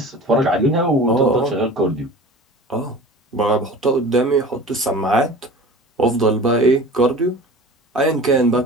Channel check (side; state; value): both; normal; correlation 0.39